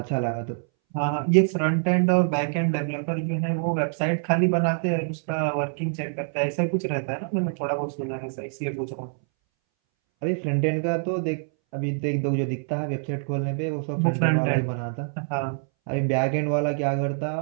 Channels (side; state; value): left; silent; 61 dB below the other